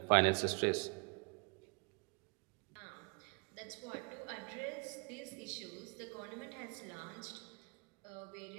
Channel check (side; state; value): left; quieter; 33.8 dB